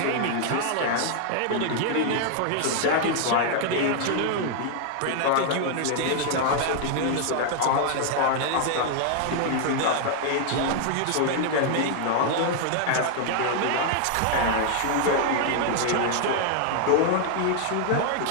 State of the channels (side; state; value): both; different; correlation 0.00